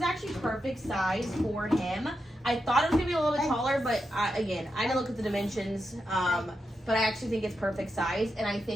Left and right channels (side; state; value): both; normal; correlation 0.86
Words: actually perfect size for him. I thought it was gonna be a little bit taller, but again, I didn't look at the dimensions. But I actually think it's perfect size, and I